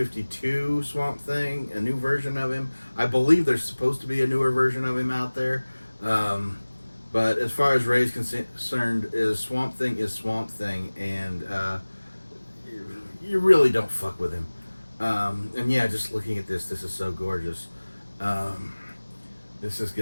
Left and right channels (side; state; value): both; inverted; correlation -1.00